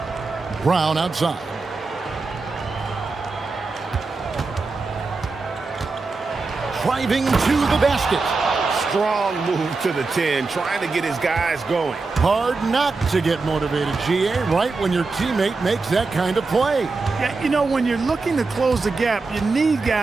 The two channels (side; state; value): left; quieter; 4.0 dB